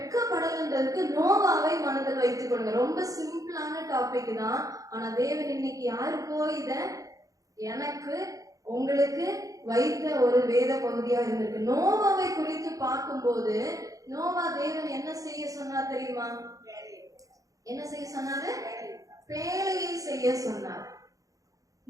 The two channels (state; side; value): late; left; 0.17 ms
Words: நோவாவை மனதில் வைத்துக்கொள்ளுங்க. ரொம்ப சிம்பிளான டாபிக் தான். ஆனா தேவன் இன்னைக்கு யாருக்கோ இத எனக்கு உங்களுக்கு வைத்த ஒரு வேத பகுதியா இருந்திருக்கு. நோவாவை குறித்து பார்க்கும்போது நோவா தேவன் என்ன செய்ய சொன்னார் தெரியுமா? என்ன செய்ய சொன்னாரு? பேழையை செய்ய சொன்னார்.